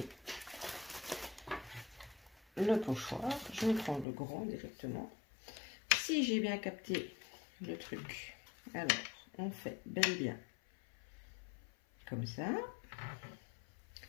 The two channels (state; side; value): drops out; right; at 4.0 s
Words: le pochoir. Je vais prendre le grand directement. Si j'ai bien capté le truc, alors on fait bel et bien comme ça.